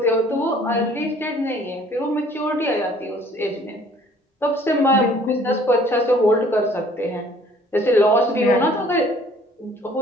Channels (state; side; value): normal; both; correlation 0.56